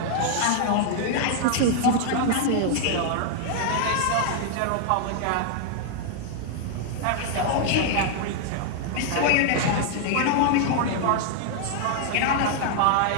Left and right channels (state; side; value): different; both; correlation 0.00